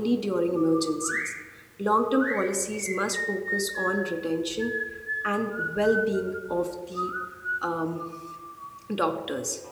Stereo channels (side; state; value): both; identical; correlation 1.00